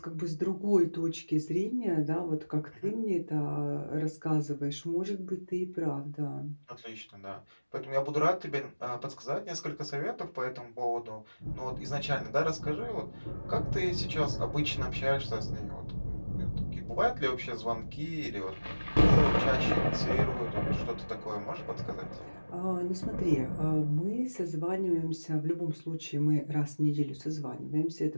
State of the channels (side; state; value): both; inverted; correlation -1.00